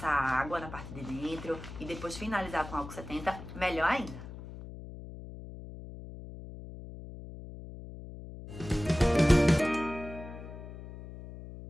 água na parte de dentro e depois finalizar com álcool 70, melhor ainda.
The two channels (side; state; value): left; noise; hum, 12 dB below the sound